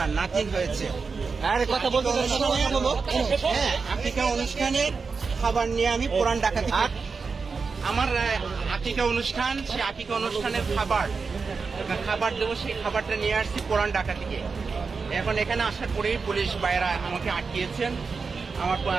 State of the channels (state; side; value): quieter; left; 4.9 dB